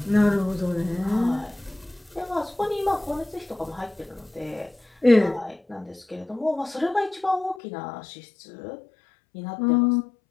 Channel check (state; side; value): drops out; right; at 7.6 s